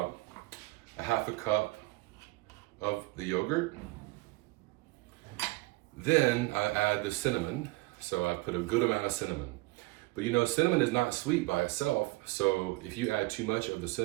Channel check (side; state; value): left; quieter; 21.7 dB